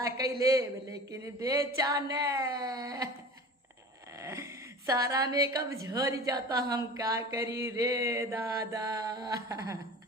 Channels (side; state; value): both; normal; correlation 0.38